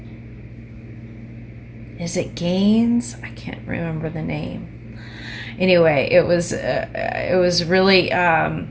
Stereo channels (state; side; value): identical; both; correlation 1.00